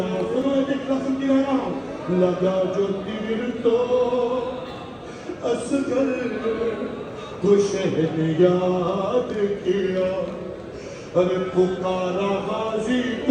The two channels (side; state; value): both; identical; correlation 1.00